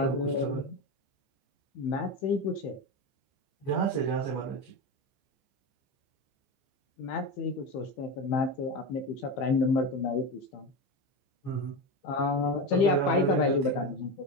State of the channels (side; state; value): right; late; 15 ms